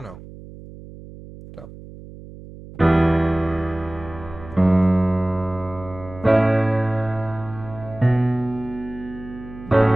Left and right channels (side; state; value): right; noise; hum, 16 dB below the sound